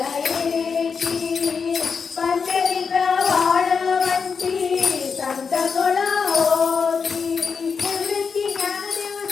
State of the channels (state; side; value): quieter; right; 5.6 dB